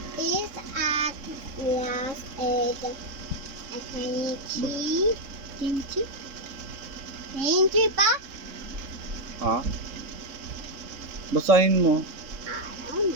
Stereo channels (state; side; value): late; left; 3.6 ms